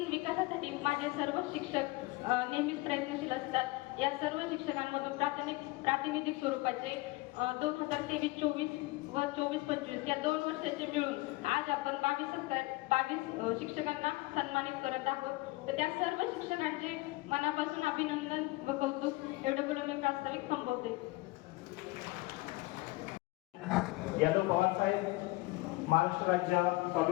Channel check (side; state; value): right; quieter; 21.8 dB